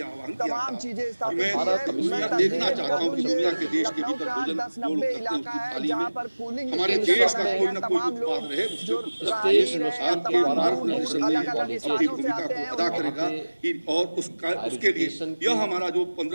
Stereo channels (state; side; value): inverted; both; correlation -1.00